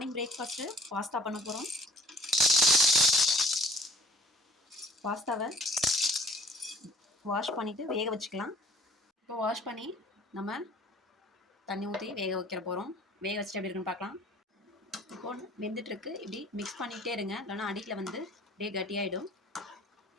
breakfast pasta பண்ண போகிறோம். பாஸ்தாவை வாஷ் பண்ணிவிட்டு வேக வச்சுக்கலாம். இப்போ வாஷ் பண்ணி நம்ம தண்ணி ஊற்றி வேக வைக்கிற போகிறோம். வேக வச்சுட்டு எப்படி இருக்குன்னு பார்க்கலாம். இப்போது வெந்துட்டுருக்கு. இப்படி மிக்ஸ் பண்ணிகிட்டே இருங்க, இல்லைனா அடியில் வந்து அப்படியே கட்டியாகிடும்.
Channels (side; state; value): both; normal; correlation 0.53